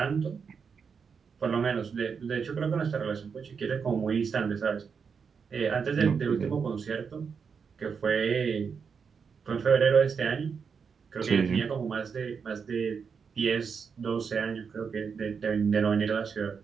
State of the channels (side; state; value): left; quieter; 6.1 dB